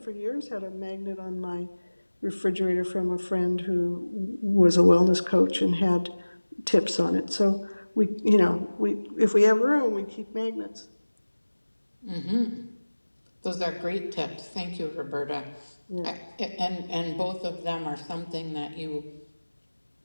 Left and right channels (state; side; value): inverted; both; correlation -1.00